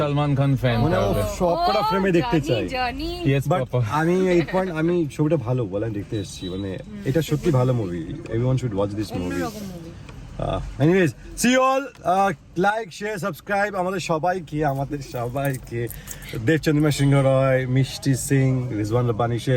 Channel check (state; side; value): identical; both; correlation 1.00